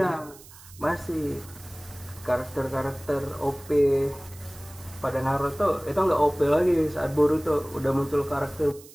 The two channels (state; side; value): noise; right; hiss, 21 dB below the sound